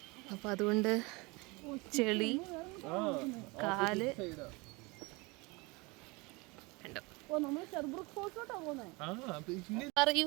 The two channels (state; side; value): quieter; left; 26.3 dB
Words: അപ്പോൾ അതുകൊണ്ട് ചെളി, കാല് പറയൂ,